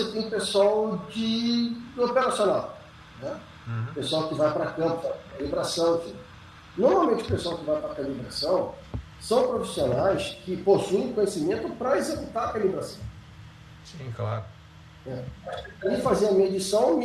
tem o pessoal do operacional, né? O pessoal que vai para campo, calibração, enfim. Normalmente o pessoal que vai para a calibração são profissionais que possuem conhecimento para executar a calibração. Sim, claro. Ele fazia a medição,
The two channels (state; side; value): identical; both; correlation 1.00